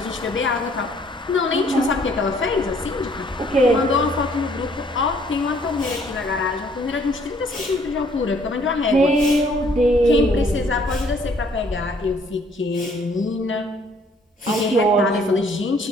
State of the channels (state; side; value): normal; both; correlation 0.62